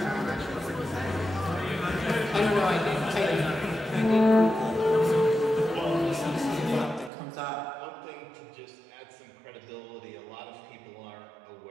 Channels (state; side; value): drops out; left; at 7.1 s